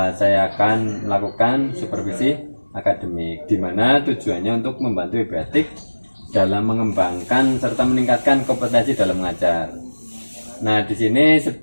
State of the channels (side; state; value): both; inverted; correlation -1.00